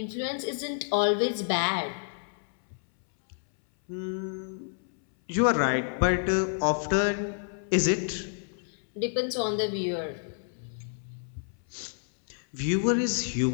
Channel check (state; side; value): silent; right; 59 dB below the other